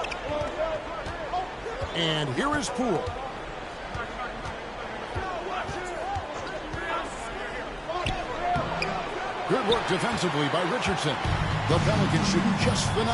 And here is Poole. Good work defensively by Richardson. The Pelicans shooting just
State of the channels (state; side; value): identical; both; correlation 1.00